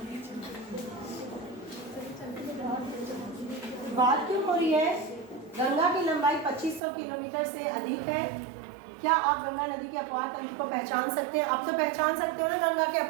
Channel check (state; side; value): drops out; left; at 6.8 s